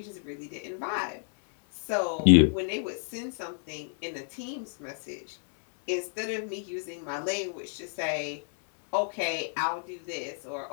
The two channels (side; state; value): right; silent; digital silence